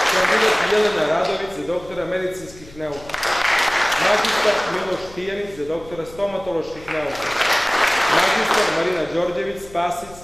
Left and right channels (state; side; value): noise; left; hum, 21 dB below the sound